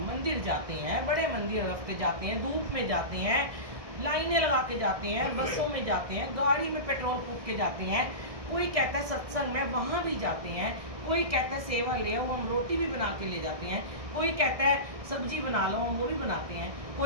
मंदिर जाते हैं, बड़े मंदिर रफ्ते जाते हैं, धूप में जाते हैं, लाइनें लगा के जाते हैं, बसों में जाते हैं, गाड़ी में पेट्रोल फूक के जाते हैं। कोई कहता है सत्संग में, वहाँ भी जाते हैं। कोई कहता है सेवा ले आओ, हम रोटी भी बना के ले जाते हैं। कोई कहता है सब्जी बना लो, हम वो भी बनाते हैं।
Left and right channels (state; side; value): late; left; 1.6 ms